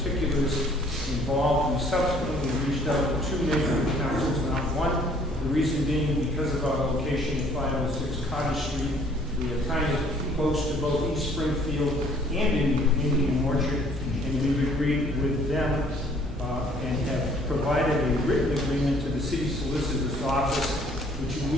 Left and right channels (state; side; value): normal; both; correlation 0.58